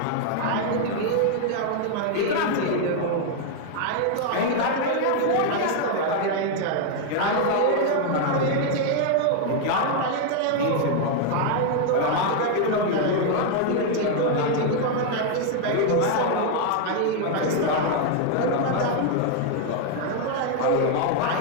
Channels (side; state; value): both; different; correlation 0.00